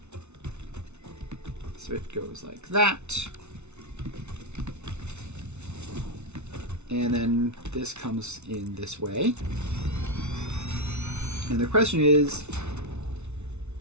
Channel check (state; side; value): late; left; 0.82 ms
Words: So it goes like that. And then this comes in this way. And the question is,